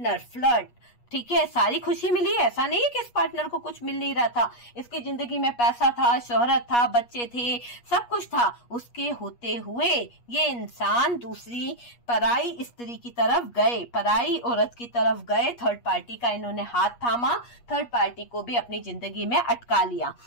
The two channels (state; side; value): late; right; 8.4 ms